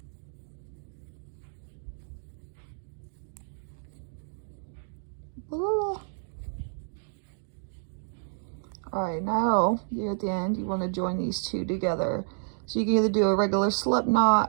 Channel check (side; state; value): left; silent; digital silence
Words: Alright, now you're at the end, you want to join these two together. So you can either do a regular slip